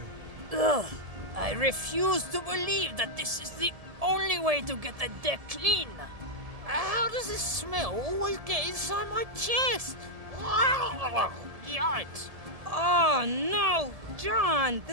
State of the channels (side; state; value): left; late; 1.7 ms